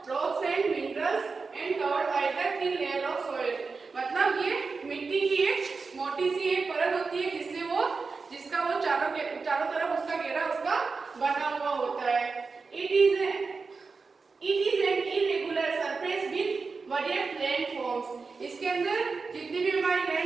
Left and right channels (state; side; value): quieter; left; 4.5 dB